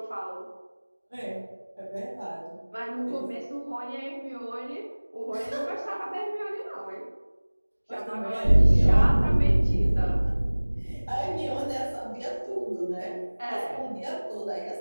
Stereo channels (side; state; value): both; inverted; correlation -1.00